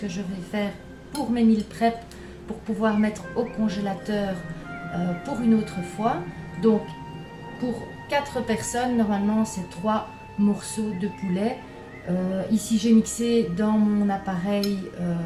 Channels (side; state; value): both; identical; correlation 1.00